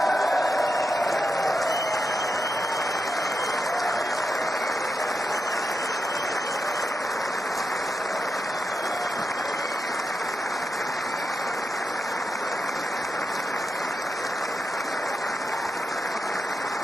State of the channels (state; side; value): normal; both; correlation 0.87